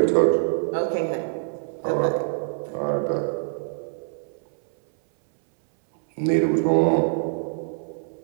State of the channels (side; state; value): left; silent; 60 dB below the other